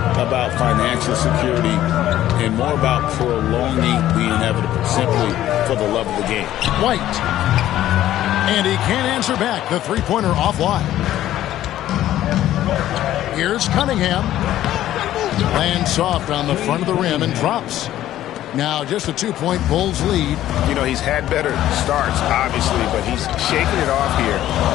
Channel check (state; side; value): quieter; right; 13.2 dB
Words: about financial security and more about prolonging the inevitable, simply for the love of the game. White. And he can't answer back. The three-pointer offline. Here's Cunningham. Lands soft on the front of the rim and drops. Now just a 2-point Bulls lead. You know, he's had better starts, obviously, but he's shaking it off here